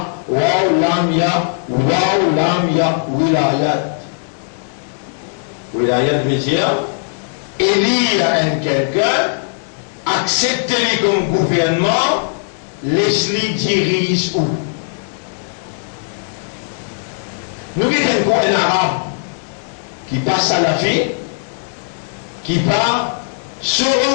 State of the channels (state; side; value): silent; right; digital silence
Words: Wow, lam ya. Wow, lam ya. Wilayat. Wilayat veut dire élire un quelqu'un, accepter-le comme gouvernement, laisse-le dirige où. Nous avons un arabe qui passe à la vie, qui part sur